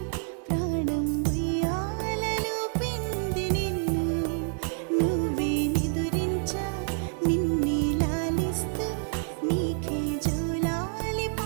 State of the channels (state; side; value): silent; left; digital silence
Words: ప్రాణం ఉయ్యాలలో పిండి నిన్ను నువ్వే నిదురించా నిన్నే నీకే జోలాలి